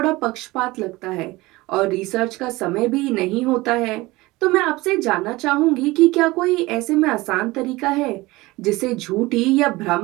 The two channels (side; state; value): left; quieter; 20.7 dB